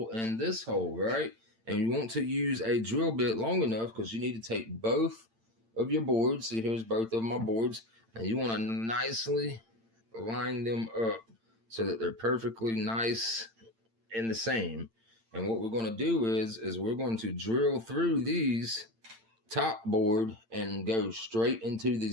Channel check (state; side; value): late; left; 8.8 ms